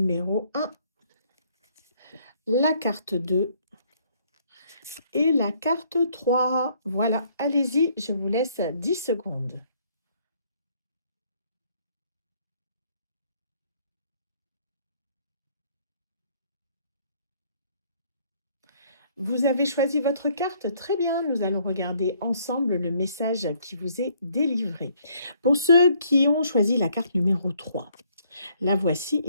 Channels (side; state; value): both; inverted; correlation -0.65